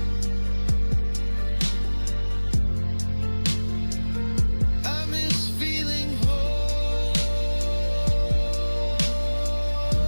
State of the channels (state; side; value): inverted; both; correlation -1.00